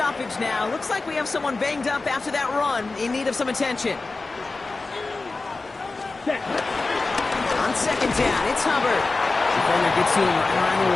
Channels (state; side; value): quieter; right; 3.6 dB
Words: now. Looks like we have someone banged up after that run in need of some attention. Set. On 2nd down, it's Hubbard. Defender gets to him right around the